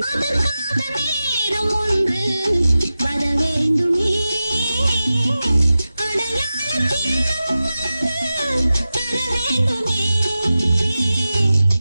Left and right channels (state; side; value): inverted; both; correlation -0.94